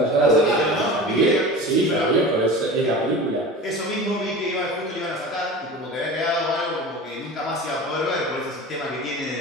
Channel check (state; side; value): normal; both; correlation 0.34